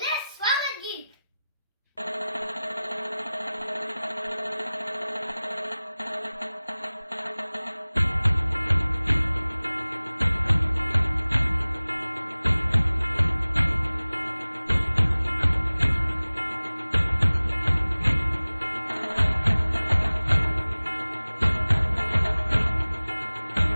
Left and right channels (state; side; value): inverted; both; correlation -0.98